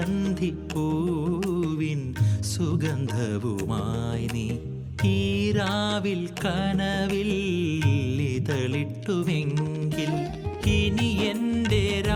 സുഗന്ധവുമായി നീ ഈ രാവിൽ കനവിൽ ഇതളിട്ടുവെങ്കിൽ ഇനി എൻ്റെ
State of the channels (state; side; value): identical; both; correlation 1.00